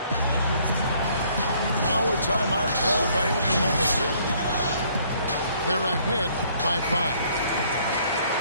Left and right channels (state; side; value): inverted; both; correlation -0.63